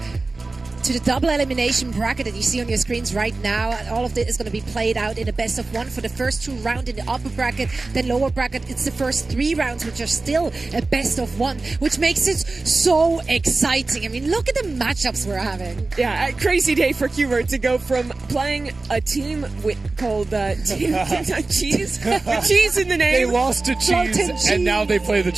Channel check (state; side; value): quieter; left; 3.5 dB